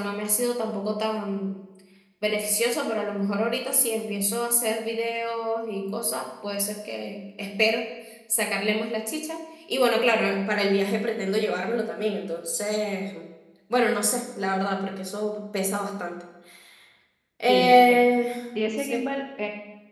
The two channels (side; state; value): both; identical; correlation 1.00